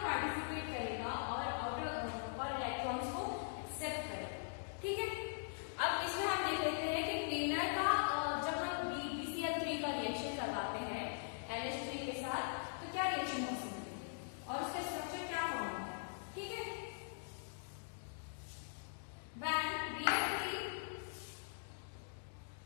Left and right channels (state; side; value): silent; right; digital silence